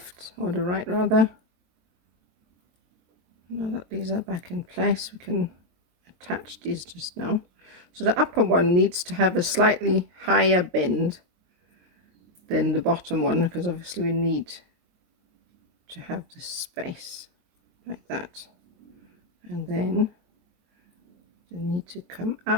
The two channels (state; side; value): late; left; 22 ms